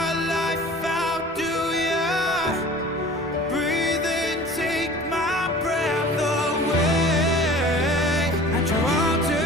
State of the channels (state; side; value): normal; both; correlation 0.44